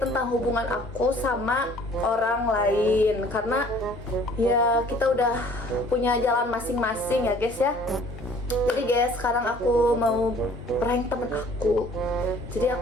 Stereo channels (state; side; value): normal; both; correlation 0.54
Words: hubungan aku sama orang lain. Karena ya kita udah punya jalan masing-masing ya guys ya. Jadi guys, sekarang aku mau prank temen aku. Jadi